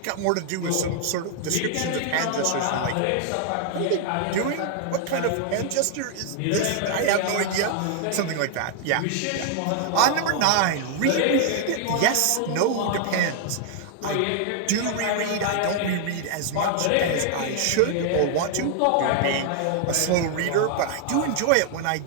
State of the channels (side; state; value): both; different; correlation 0.00